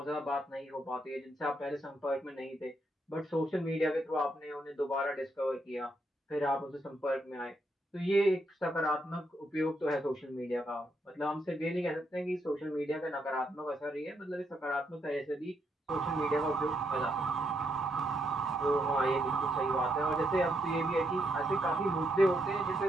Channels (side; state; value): both; normal; correlation 0.78